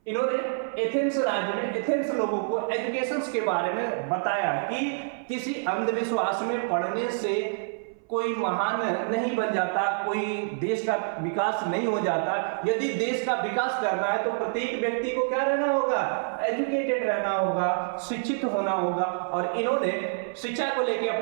इन्होंने एथेंस राज्य में एथेंस लोगों को एजुकेशन के बारे में बताया कि किसी अंधविश्वास में पढ़ने से कोई महान नहीं बन जाता, कोई देश का विकास नहीं हो जाता। यदि देश का विकास करना है तो प्रत्येक व्यक्ति को क्या रहना होगा, एजुकेटेड रहना होगा, शिक्षित होना होगा। और इन्होंने शिक्षा को लेकर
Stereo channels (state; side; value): silent; left; 57 dB below the other